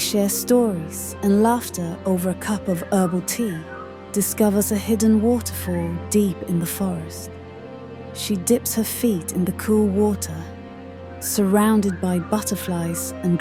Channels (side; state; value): both; identical; correlation 1.00